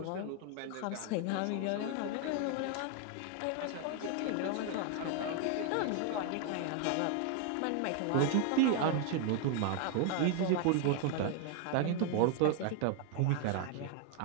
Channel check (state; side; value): different; both; correlation 0.00